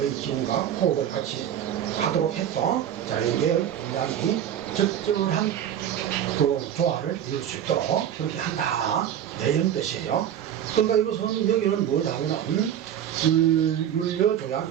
기운과 호흡을 같이 하도록 해서 자연계의 음양이 적절한 그 조화를 이룰 수 있도록 그렇게 한다. 이런 뜻이에요. 그러니까 이것은 여기는 뭐냐면은 율려조양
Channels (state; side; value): quieter; left; 10.1 dB